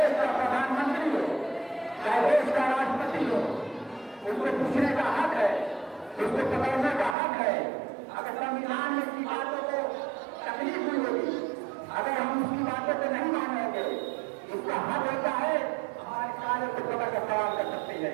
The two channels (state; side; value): drops out; left; at 7.2 s